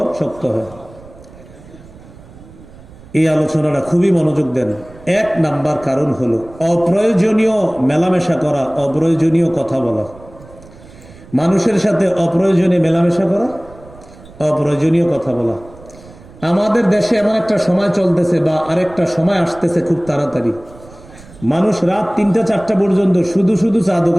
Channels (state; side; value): noise; right; rumble, 21 dB below the sound